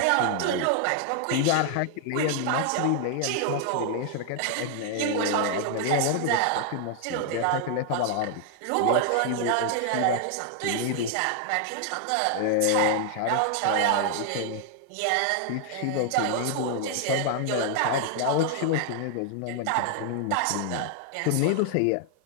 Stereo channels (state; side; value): different; both; correlation 0.00